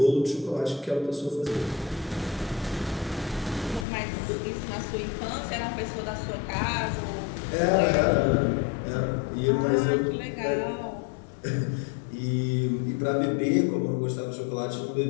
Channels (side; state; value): right; drops out; at 3.9 s